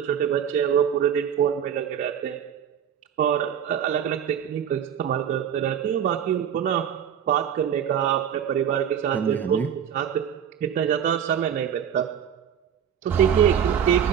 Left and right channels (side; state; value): left; quieter; 8.7 dB